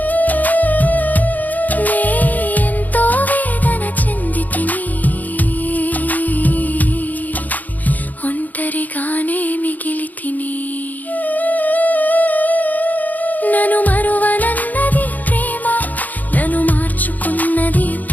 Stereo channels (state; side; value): late; right; 0.081 ms